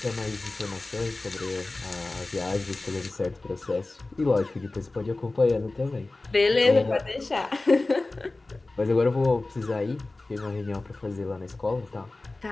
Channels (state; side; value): quieter; right; 3.1 dB